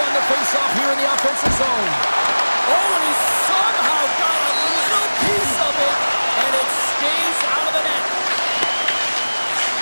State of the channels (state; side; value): inverted; both; correlation -1.00